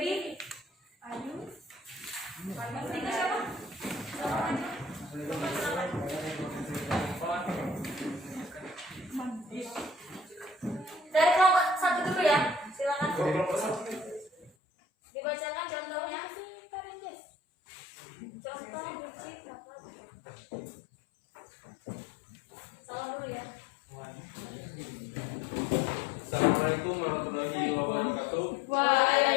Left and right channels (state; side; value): drops out; right; at 14.5 s